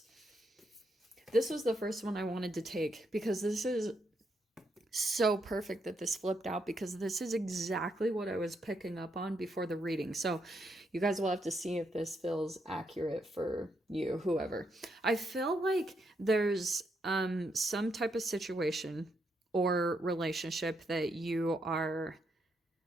This was the first one I wanted to take because this is so perfect that this flipped out, because this is exactly what I was picking up on before the reading. So you guys will have to see if this feels accurate for you, whoever. I feel like there's some type of situation or relationship that you are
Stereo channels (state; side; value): normal; both; correlation 0.78